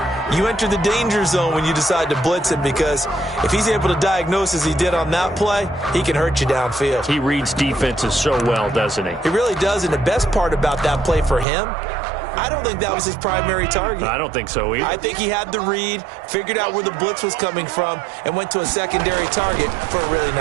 you enter the danger zone when you decide to blitz him, because if he's able to diagnose as he did on that play, he can hurt you downfield. He reads defenses so well, doesn't he? He really does, and the best part about that play for him, I don't think that was his primary target. I don't think so either. I think he had the read, figured out where the blitz was coming from, and went to a secondary target for a really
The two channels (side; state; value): left; drops out; at 11.5 s